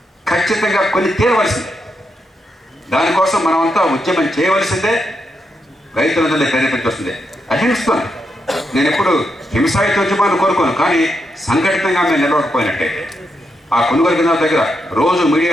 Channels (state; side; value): normal; both; correlation 0.83